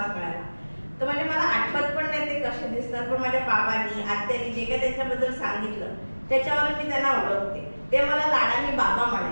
मिळाला. तर म्हणजे मला आठवत पण नाही ते कसे दिसतात, पण माझ्या बाबांनी आत्यानी जे काही त्यांच्याबद्दल सांगितलं त्याच्यावर मी त्यांना ओळखते. ते मला लाडाने बाबा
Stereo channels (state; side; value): inverted; both; correlation -1.00